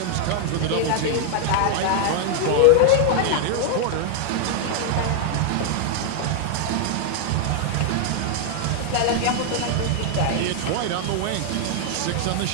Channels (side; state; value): both; different; correlation 0.00